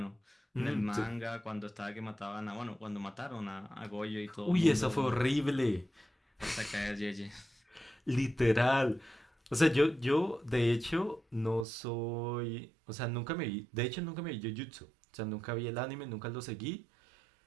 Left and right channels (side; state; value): left; drops out; at 11.7 s